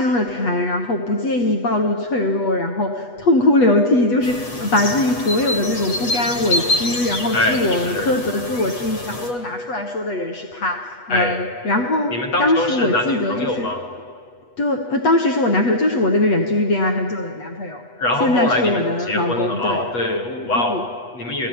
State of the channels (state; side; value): late; right; 8.2 ms